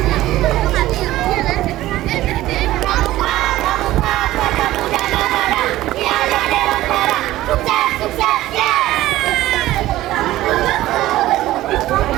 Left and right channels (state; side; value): quieter; left; 15.7 dB